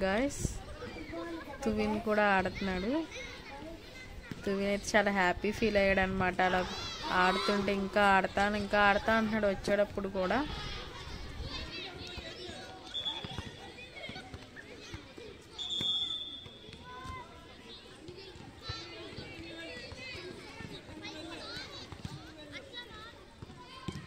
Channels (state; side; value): identical; both; correlation 1.00